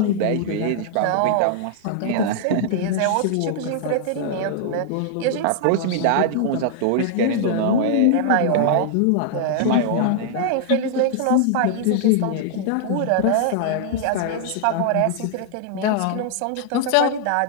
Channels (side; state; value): both; different; correlation -0.01